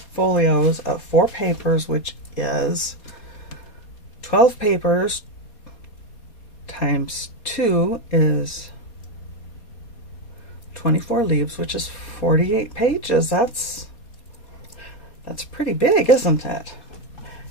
folios of 4 papers, which is 12 papers times 2 is 24 leaves, which is 48 pages. That's pretty big, isn't it?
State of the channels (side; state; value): right; late; 4.2 ms